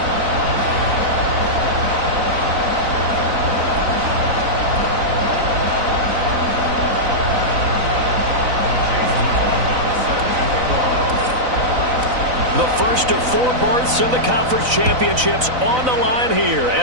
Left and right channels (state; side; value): late; left; 4.0 ms